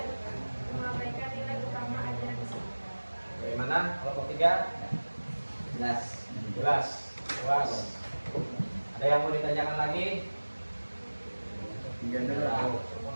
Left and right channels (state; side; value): inverted; both; correlation -1.00